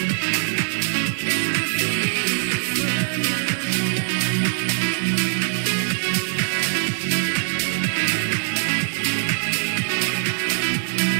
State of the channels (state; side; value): silent; left; digital silence